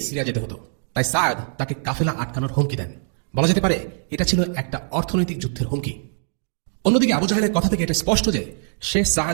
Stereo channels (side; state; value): left; silent; digital silence